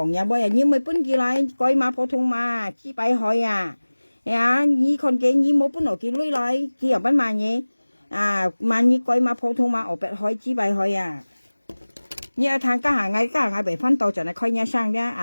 呀，不然你咪搬起來改碼普通碼幾百海啊，呀你看見你冇搬落幾類來，幾又不買嘢啊，買你改碼普通碼二百海幾百海啊，你要睇家下被分到盡係開nhà sang啫，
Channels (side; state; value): both; inverted; correlation -1.00